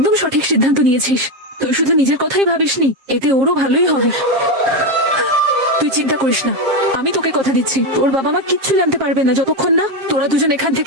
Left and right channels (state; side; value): late; left; 7.5 ms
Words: সঠিক সিদ্ধান্ত নিয়েছিস। তুই শুধু নিজের কথাই ভাবিসনি, এতে ওরও ভালোই হবে। তুই চিন্তা করিস না, আমি তোকে কথা দিচ্ছি, তোর বাবা মা কিচ্ছু জানতে পারবে না যতক্ষণ না তোরা দুজন এখান